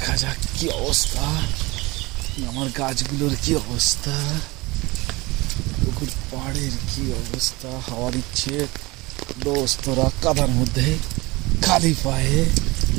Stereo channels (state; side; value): quieter; left; 22.9 dB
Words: যাক কি অবস্থা, আমার গাছগুলোর কি অবস্থা, পুকুর পাড়ের কি অবস্থা। হাওয়া দিচ্ছে, দোস্তরা কাদার মধ্যে খালি পায়ে